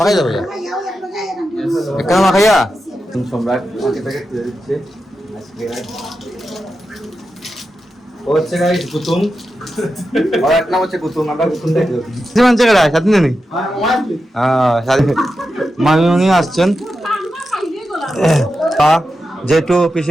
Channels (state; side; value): normal; both; correlation 0.89